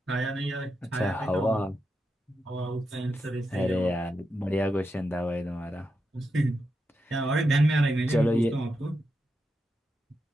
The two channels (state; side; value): normal; both; correlation 0.86